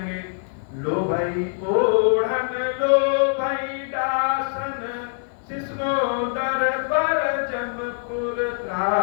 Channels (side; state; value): right; silent; 56 dB below the other